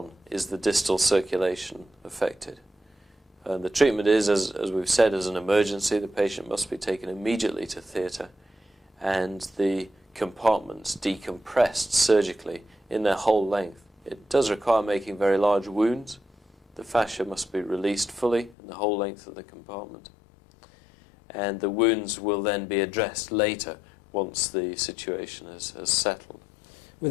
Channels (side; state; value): right; drops out; at 18.6 s